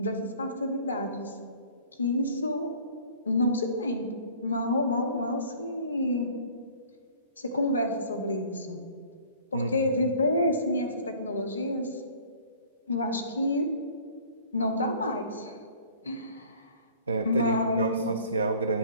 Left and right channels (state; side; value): inverted; both; correlation -0.50